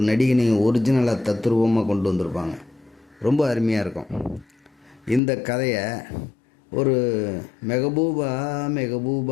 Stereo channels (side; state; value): right; drops out; at 5.2 s